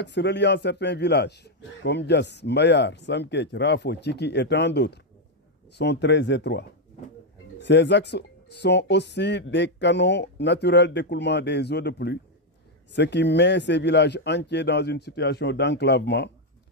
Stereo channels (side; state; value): both; normal; correlation 0.01